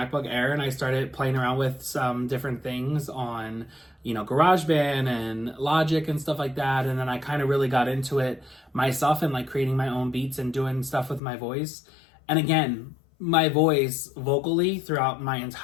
Air and I started playing around with some different things on, GarageBand and Logic and stuff like that. And then I kind of really got into it myself and like creating my own beats and doing stuff with my voice. And again, my voice vocally throughout my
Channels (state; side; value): drops out; right; at 11.2 s